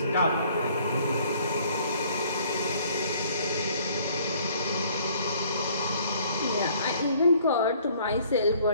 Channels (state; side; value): inverted; both; correlation -0.59